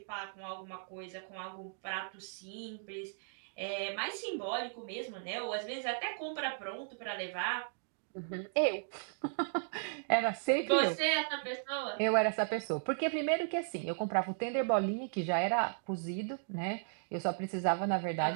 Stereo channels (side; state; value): left; silent; digital silence